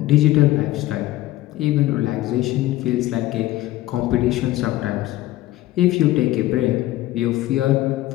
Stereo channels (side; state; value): right; quieter; 16.0 dB